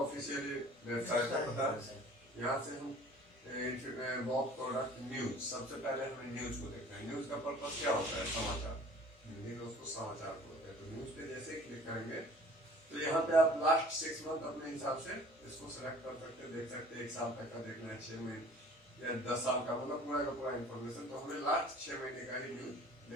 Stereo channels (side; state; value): both; normal; correlation 0.49